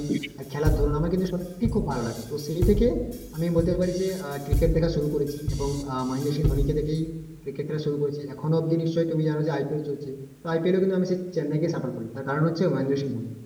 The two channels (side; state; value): both; identical; correlation 1.00